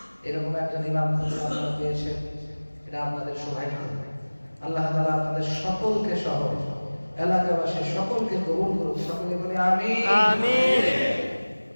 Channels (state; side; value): inverted; both; correlation -1.00